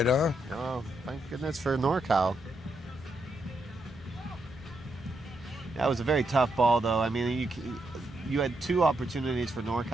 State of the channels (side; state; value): both; normal; correlation 0.81